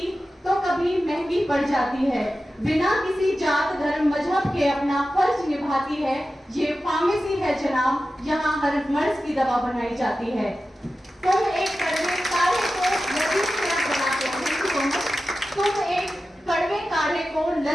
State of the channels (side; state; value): both; normal; correlation 0.93